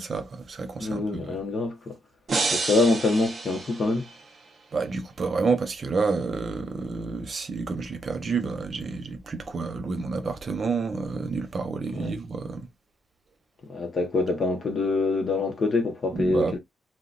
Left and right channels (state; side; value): normal; both; correlation 0.76